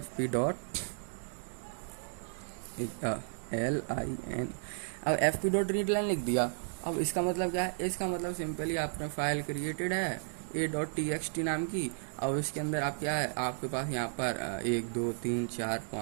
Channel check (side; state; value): left; silent; digital silence